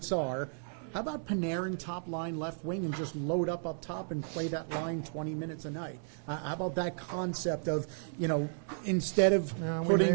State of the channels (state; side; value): silent; left; 55 dB below the other